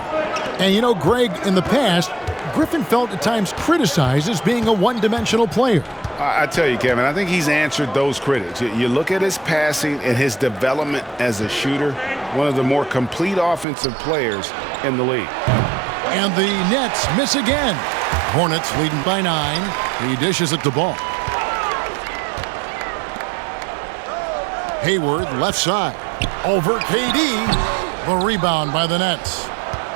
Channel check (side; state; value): left; drops out; at 13.7 s